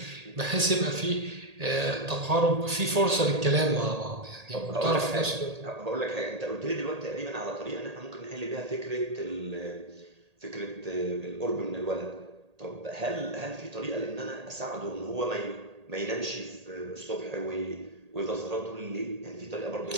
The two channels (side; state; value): left; late; 1.8 ms